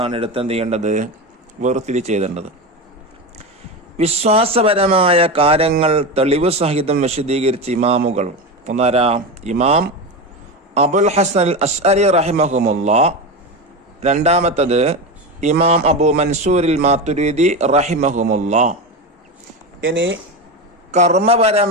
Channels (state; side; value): normal; both; correlation 0.20